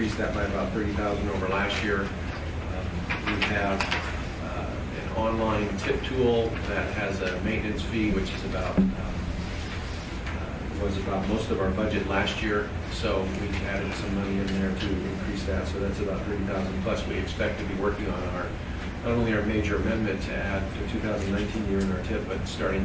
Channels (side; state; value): both; identical; correlation 1.00